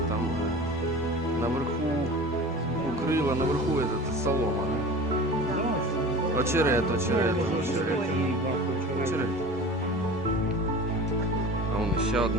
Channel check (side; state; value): both; normal; correlation 0.36